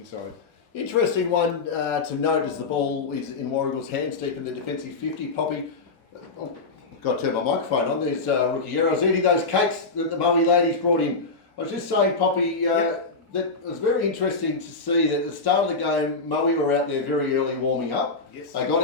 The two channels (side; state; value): right; quieter; 3.9 dB